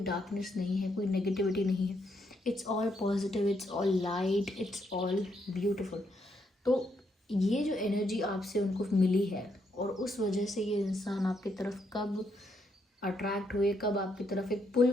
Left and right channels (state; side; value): normal; both; correlation 0.76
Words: नहीं है, कोई नेगेटिविटी नहीं है। It's all positive, it's all light, it's all beautiful. तो ये जो एनर्जी आपसे उनको मिली है और उस वजह से ये इंसान आपकी तरफ कब अट्रैक्ट हुए, कब आपकी तरफ एक पुल